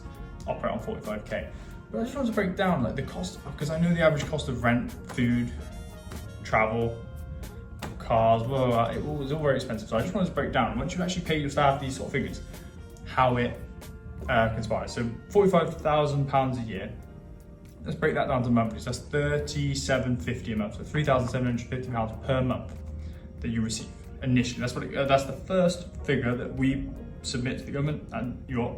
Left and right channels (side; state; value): both; identical; correlation 1.00